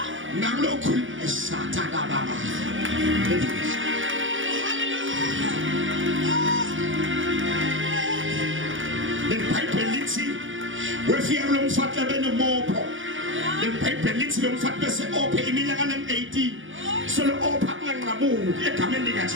nangilokhuluma esathana baba. The Bible lithi wefika lo mfati abenomopho. The Bible lithi lo mfati bese ophe iminyaka em18. So lo opha kunganqamuki egameni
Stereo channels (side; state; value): left; late; 0.57 ms